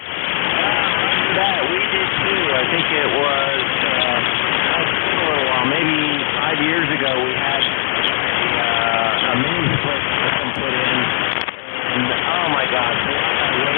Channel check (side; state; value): right; silent; digital silence